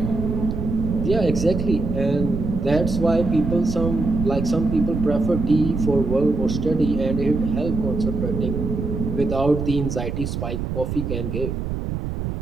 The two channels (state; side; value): noise; right; rumble, 3 dB below the sound